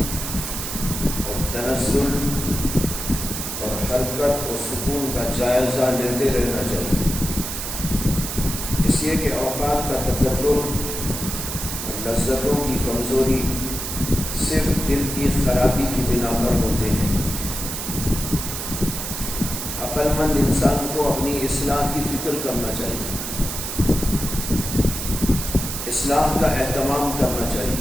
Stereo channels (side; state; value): right; noise; hiss, 5 dB below the sound